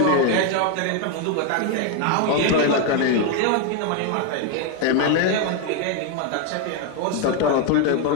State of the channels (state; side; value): different; both; correlation 0.01